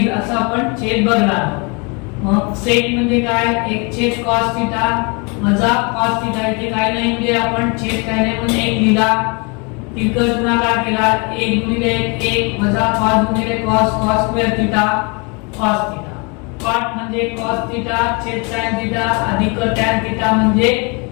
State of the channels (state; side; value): quieter; right; 31.4 dB